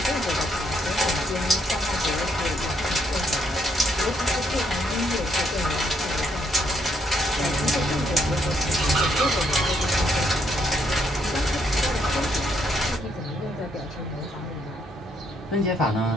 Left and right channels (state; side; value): normal; both; correlation 0.73